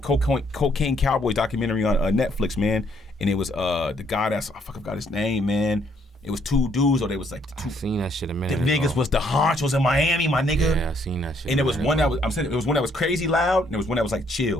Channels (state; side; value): normal; both; correlation 0.69